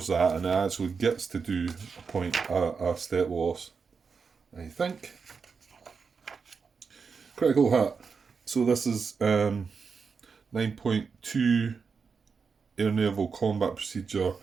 that and it actually gets to do a step loss, I think. Critical hit. So this is 9.2 air naval combat procedure,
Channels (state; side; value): quieter; left; 5.4 dB